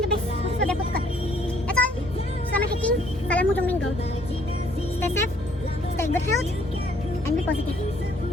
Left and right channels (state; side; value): normal; both; correlation 0.63